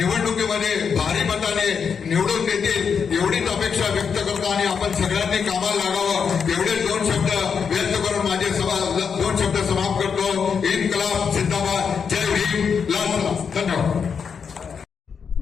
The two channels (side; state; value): right; quieter; 6.4 dB